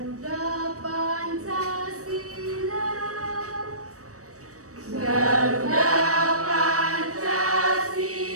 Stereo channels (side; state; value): left; late; 0.66 ms